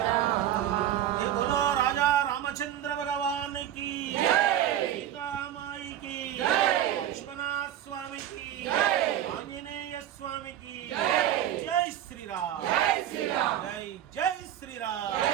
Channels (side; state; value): left; quieter; 11.3 dB